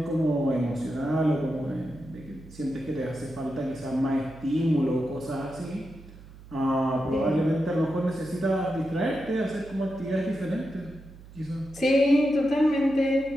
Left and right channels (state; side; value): noise; right; hum, 19 dB below the sound